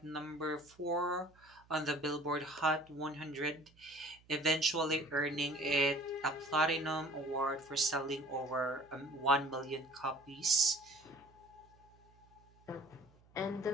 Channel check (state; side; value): noise; right; hum, 28 dB below the sound